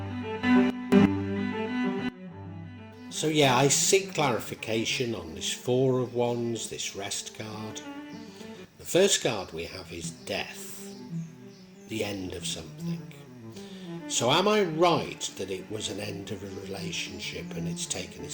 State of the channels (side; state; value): both; identical; correlation 1.00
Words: So yeah, I seek clarification on this Four of Wands, this rest card. The first card we have is death, the end of something. So am I right that it was an end of a relationship and it's taken